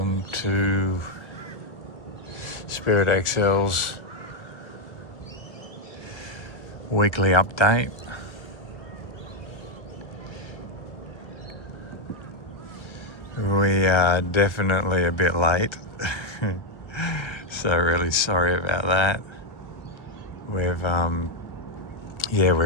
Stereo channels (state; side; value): late; right; 1.3 ms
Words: to Spirit XL's weekly update. We are definitely a bit late, so really sorry about that. We've